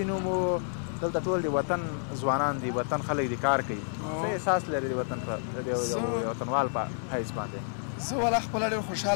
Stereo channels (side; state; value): right; silent; 58 dB below the other